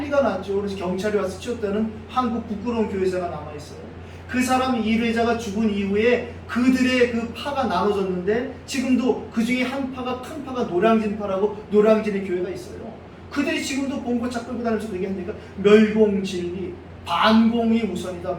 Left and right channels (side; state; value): both; identical; correlation 1.00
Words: 났죠. 그래서 경찰이 와서 치웠다는 한국 부끄러운 교회사가 남아있어요. 그 사람 일회자가 죽은 이후에 그들의 그 파가 나눠졌는데 지금도 그 중에 한 파가 큰 파가 노량진파라고 노량진의 교회가 있어요. 그들이 지금도 본고차 끌고 다니면서 얘기하니까 멸공진리, 반공이 우선이다